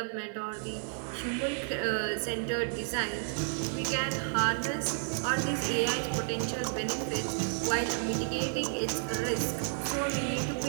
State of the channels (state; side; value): silent; left; digital silence